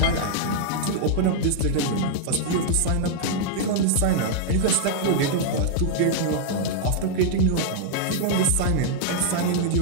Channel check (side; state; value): both; different; correlation -0.01